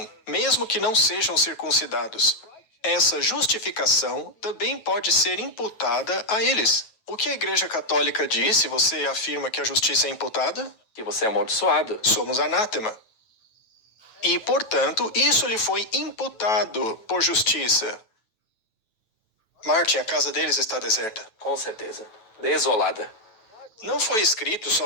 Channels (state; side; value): late; right; 9.2 ms